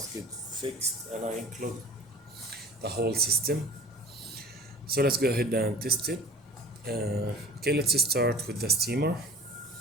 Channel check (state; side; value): normal; both; correlation 0.43